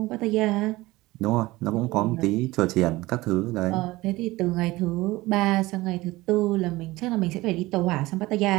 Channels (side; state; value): left; quieter; 19.6 dB